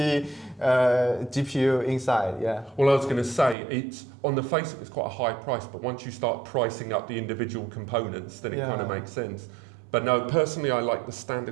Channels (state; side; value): drops out; left; at 3.6 s